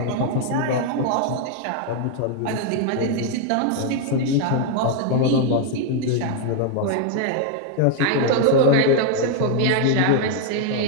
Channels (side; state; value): both; different; correlation 0.00